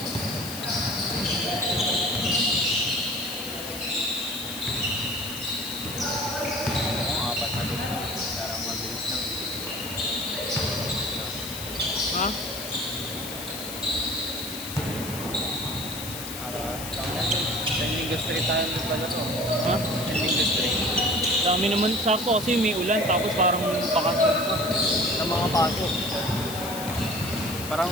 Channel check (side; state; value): left; noise; hiss, 9 dB below the sound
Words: Apat na din. Parang mabilis lang. Ha? Sending Street tayo pala to. Ha? Sending Street. Dami naman sakto kasi may ulan tapos parang pakat Sa mga pasok. Parang